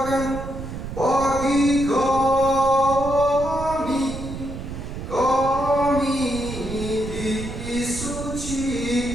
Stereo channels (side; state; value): right; noise; rumble, 8 dB below the sound